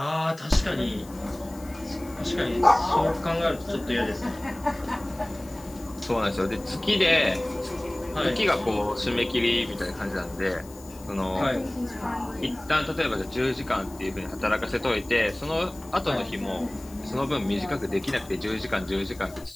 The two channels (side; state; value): left; noise; hiss, 21 dB below the sound